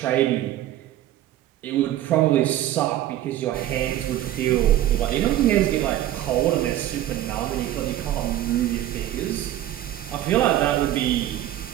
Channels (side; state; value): left; quieter; 13.1 dB